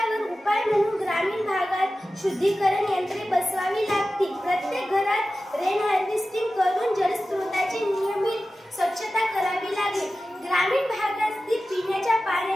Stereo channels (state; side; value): normal; both; correlation 0.94